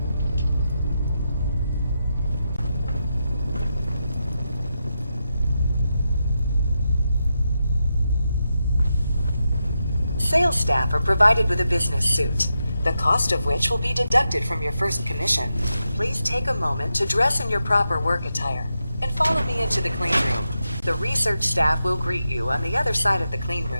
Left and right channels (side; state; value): both; inverted; correlation -0.87